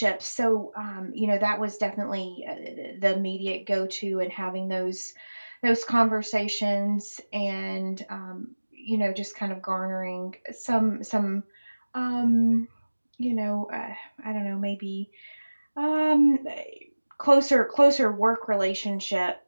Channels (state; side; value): inverted; both; correlation -1.00